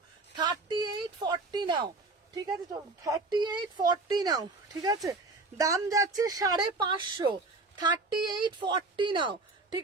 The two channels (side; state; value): left; quieter; 3.5 dB